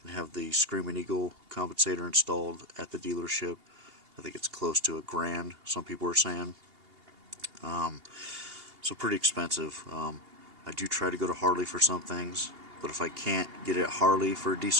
and have the Screaming Eagle compensator installed at the dealership. I think it's close to $1,000, some people are saying. So pretty expensive. I do try to go to Harley for some things, but if I can't get it at Harley for a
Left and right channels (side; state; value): left; late; 2.8 ms